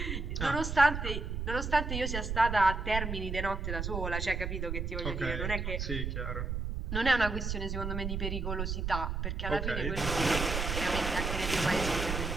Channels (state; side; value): noise; right; rumble, 3 dB below the sound